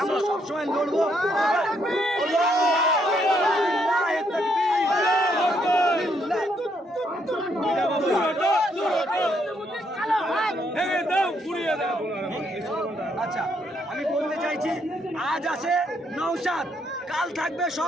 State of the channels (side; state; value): both; normal; correlation 0.73